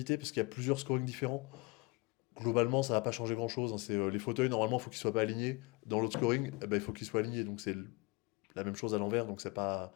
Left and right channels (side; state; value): right; quieter; 26.3 dB